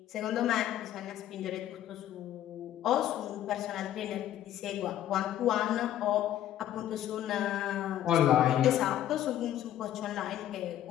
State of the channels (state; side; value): quieter; right; 12.0 dB